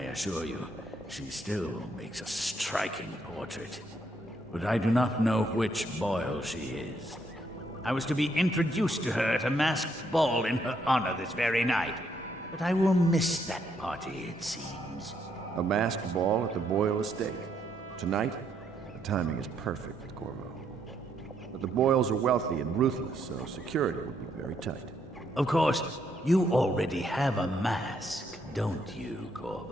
you, she still makes a striking portrait. But I do not know which Boyle she is. I was to be introduced to her at a masked ball in her honor this very night. But I will miss that party, it seems. A masked ball at the Boyle estate. Tonight? The timing is perfect, Corvo. But the Boyles are wealthy and ruthless, so security would be very tight. Of course, you already have a mask, don't you,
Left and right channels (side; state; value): both; normal; correlation 0.73